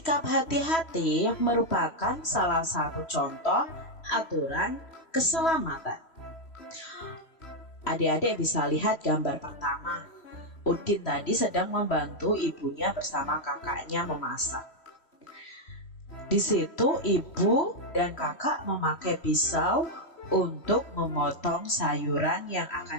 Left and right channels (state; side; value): late; right; 3.1 ms